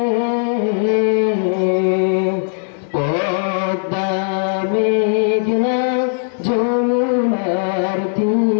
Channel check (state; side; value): silent; right; digital silence